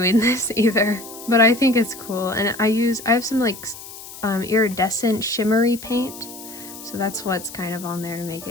this either, but I think it's cool. And I have some like iridescent shimmery paint, so that's what's kind of on there to make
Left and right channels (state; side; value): noise; left; hiss, 14 dB below the sound